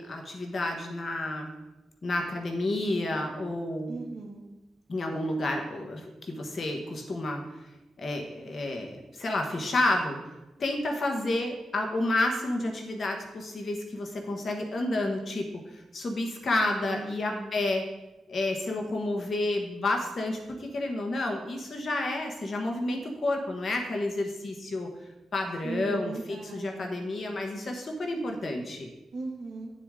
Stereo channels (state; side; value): normal; both; correlation 0.88